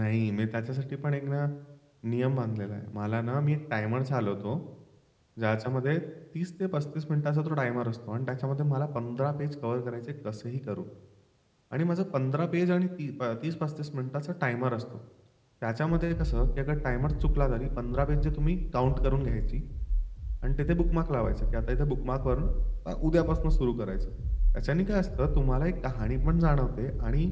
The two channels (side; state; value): both; identical; correlation 1.00